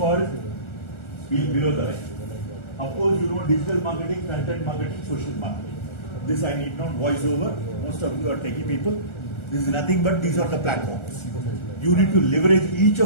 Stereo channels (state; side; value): late; right; 1.4 ms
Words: below the line. Of course, you know digital marketing, content marketing, social marketing. This I need not voice over. Most of you are techie people. This is nothing but these are the platforms. You need to leverage each